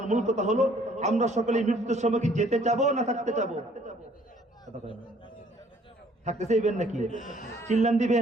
মূল কথা হলো, আমরা সকলে মৃত্যুর সময় কি যেতে চাবো না থাকতে চাবো? থাকতে চাইবেন নাকি? চিল্লান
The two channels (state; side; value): normal; both; correlation 0.60